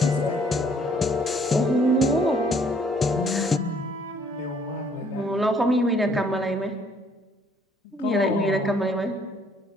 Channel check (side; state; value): both; normal; correlation 0.63